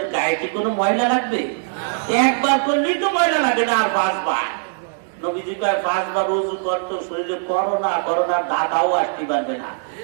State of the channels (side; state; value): left; silent; digital silence